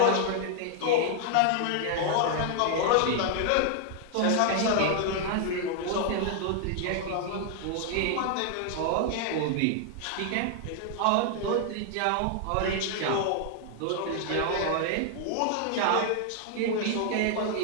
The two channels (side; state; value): both; different; correlation 0.00